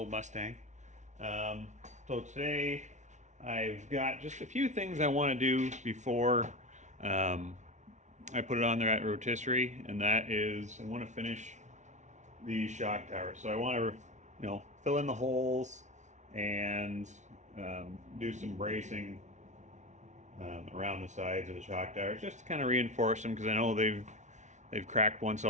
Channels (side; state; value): left; late; 0.35 ms